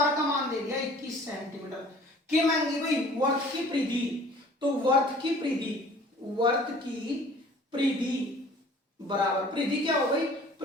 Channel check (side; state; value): both; normal; correlation 0.50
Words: का मान दे दिया 21 सेंटीमीटर। क्या मांगी भाई? वर्त की परिधि। तो वर्त की परिधि बराबर, परिधि क्या हो गई?